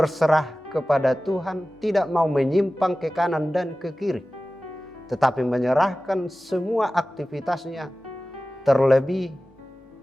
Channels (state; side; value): normal; both; correlation 0.96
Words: kepada Tuhan, tidak mau menyimpang ke kanan dan ke kiri, tetapi menyerahkan semua aktivitasnya, terlebih